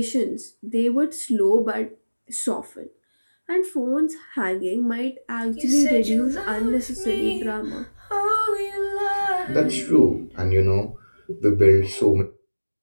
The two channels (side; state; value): both; inverted; correlation -1.00